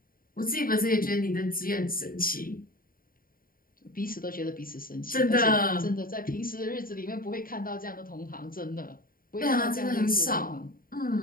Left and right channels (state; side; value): late; right; 0.41 ms